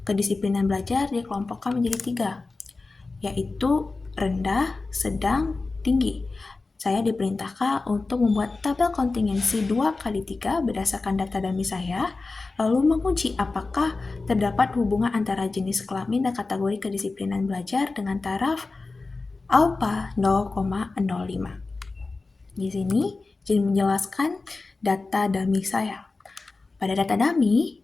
Kedisiplinan belajar dikelompokkan menjadi 3, yaitu rendah, sedang, tinggi. Saya diperintahkan untuk membuat tabel kontingensi 2x3 berdasarkan data dummy saya, lalu menguji apakah terdapat hubungan antara jenis kelamin dan kategori kedisiplinan belajar dengan taraf alfa 0,05. Di sini jadi menjelaskan data dummy saya. Pada data dummy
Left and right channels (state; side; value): quieter; right; 3.7 dB